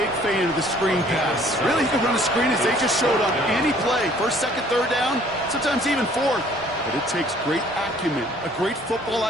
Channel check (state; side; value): normal; both; correlation 0.57